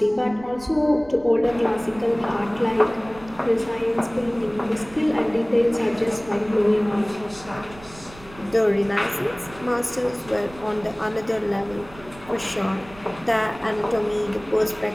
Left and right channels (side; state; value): right; noise; rumble, 20 dB below the sound